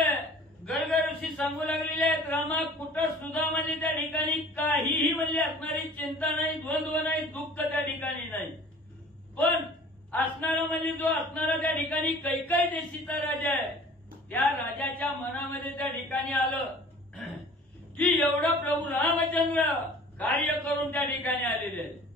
गर्ग ऋषी सांगू लागलेले आहेत, रामा कुठं सुद्धा म्हणजे त्या ठिकाणी काहीही म्हणजे असणारी चिंता नाही, द्वंद्व नाही, दुःख त्या ठिकाणी नाही. पण असणारा म्हणजे जो असणारा त्या ठिकाणी कैकेयी देशीचा राजा आहे, त्या राजाच्या मनामध्ये त्या ठिकाणी आलं की एवढं प्रभू रामचंद्र कार्य करून त्या ठिकाणी आलेले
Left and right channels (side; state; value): both; normal; correlation 0.47